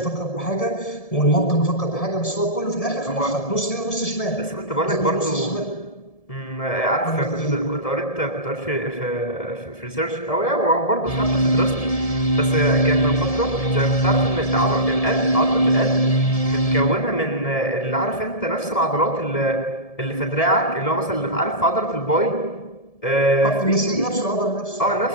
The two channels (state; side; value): late; right; 1.7 ms